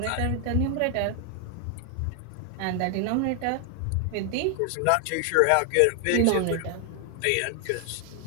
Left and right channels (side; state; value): both; different; correlation 0.00